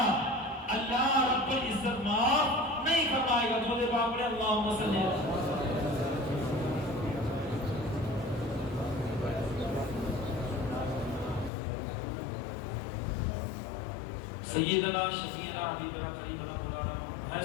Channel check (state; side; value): drops out; right; at 11.5 s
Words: اللہ رب العزت معاف نہیں فرمائے گا۔ درود پاک پڑھیں، اللہم صلی اللہ علیہ وسلم۔ سیدنا شفیعنا حبیبنا قریبنا مولانا، ہے